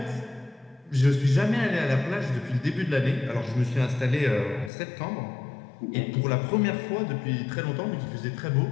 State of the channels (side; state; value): right; drops out; at 4.7 s